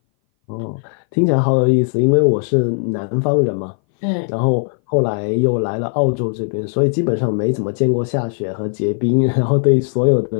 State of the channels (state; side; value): silent; right; 60 dB below the other